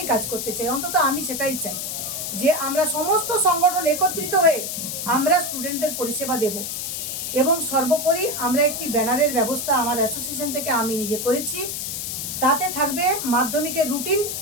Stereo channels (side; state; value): left; noise; hiss, 4 dB below the sound